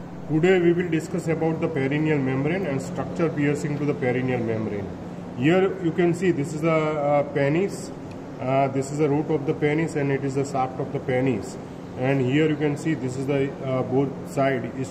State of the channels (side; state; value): both; identical; correlation 1.00